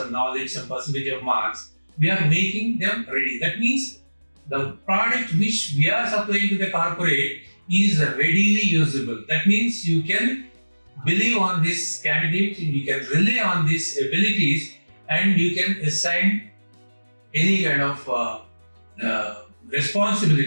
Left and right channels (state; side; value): inverted; both; correlation -1.00